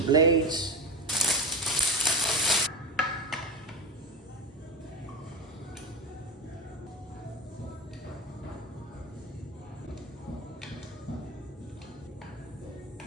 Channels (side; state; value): both; normal; correlation 0.19